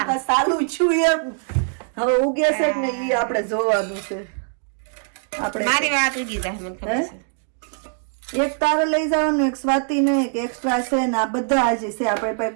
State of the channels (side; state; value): left; silent; 64 dB below the other